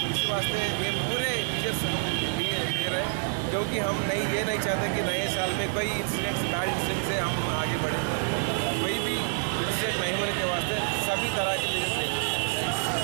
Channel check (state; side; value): silent; left; digital silence